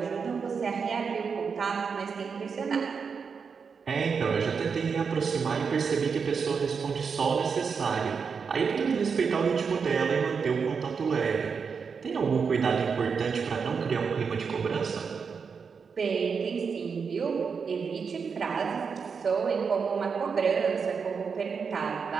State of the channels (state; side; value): quieter; left; 5.8 dB